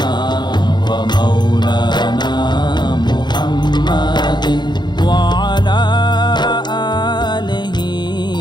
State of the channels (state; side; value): late; right; 0.21 ms